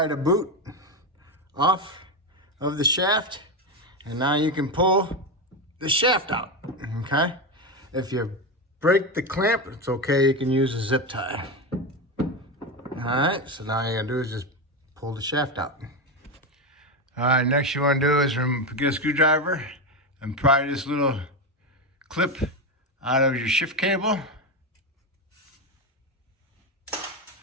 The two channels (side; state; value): both; normal; correlation 0.14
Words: the boot off of the shaft, and now you can pull the shaft out, okay? If you break the clamp, it's okay, you can use a zip tie. All right, so now all you gotta do is just pull the shaft out. All right, next you wanna do is get a screwdriver and pry this little clip out of your shift cable.